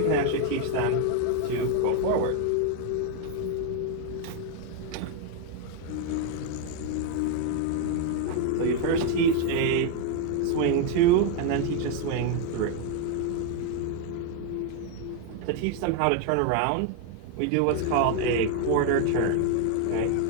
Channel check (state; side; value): different; both; correlation 0.01